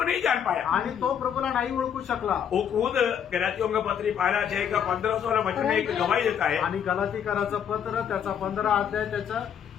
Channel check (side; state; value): right; quieter; 8.5 dB